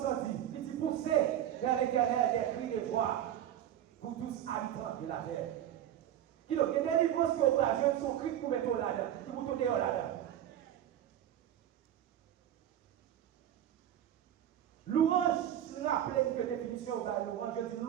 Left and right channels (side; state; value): left; quieter; 11.1 dB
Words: dire. Il dit pousser vers l'éternel des cris de joie pour tous habitants de la terre. Il y a des délivrance qui ont son cri pour mettre là-dedans, pour tourner là-dedans. Louange, je rappelle que définition de louange, je dis